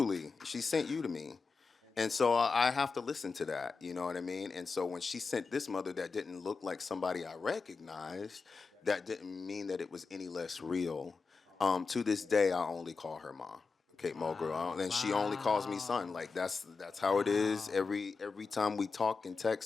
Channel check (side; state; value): right; quieter; 4.6 dB